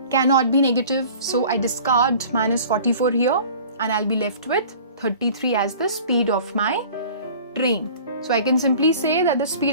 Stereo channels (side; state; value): both; inverted; correlation -0.45